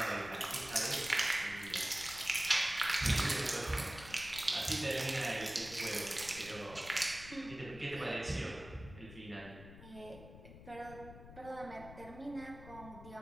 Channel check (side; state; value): left; noise; rumble, 15 dB below the sound